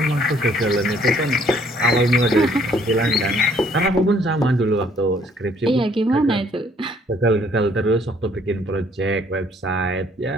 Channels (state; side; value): normal; both; correlation 0.63